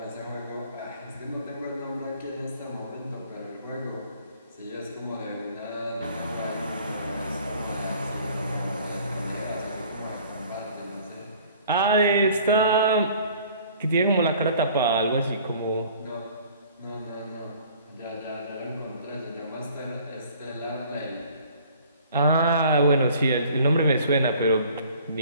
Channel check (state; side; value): inverted; both; correlation -0.53